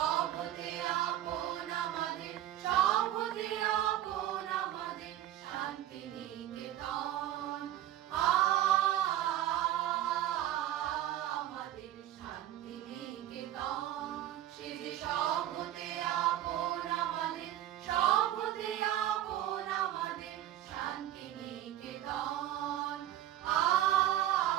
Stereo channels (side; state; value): left; quieter; 12.8 dB